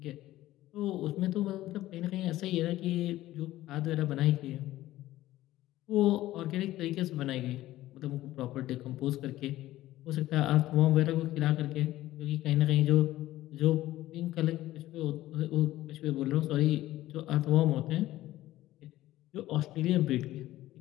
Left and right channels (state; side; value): quieter; right; 15.4 dB